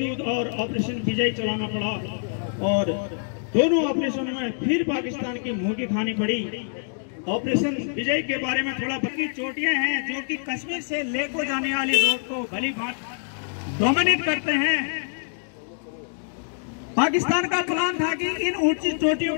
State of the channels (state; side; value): silent; right; digital silence